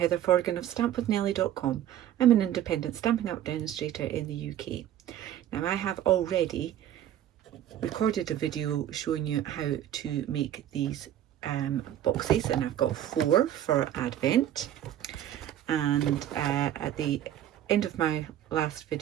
Forgan of stampwithnellie.com. I'm an independent Stampin' Up demonstrator in the UK. Now I have already recorded a video showing you how to make these boxes, and I've got 4 for Advent. And at the end of my last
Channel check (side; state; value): left; quieter; 11.5 dB